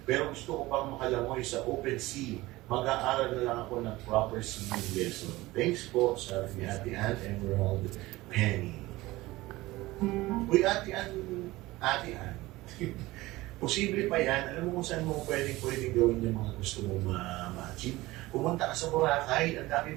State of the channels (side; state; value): left; quieter; 19.1 dB